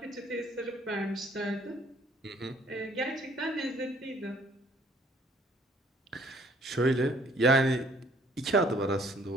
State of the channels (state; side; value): normal; both; correlation 0.61